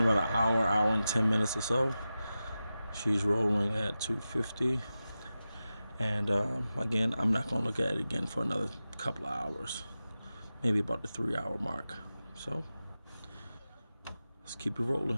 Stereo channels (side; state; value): both; inverted; correlation -0.93